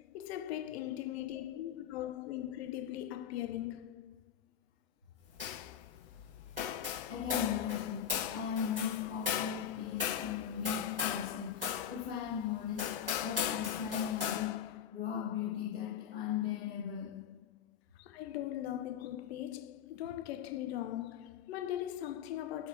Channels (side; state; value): right; quieter; 9.2 dB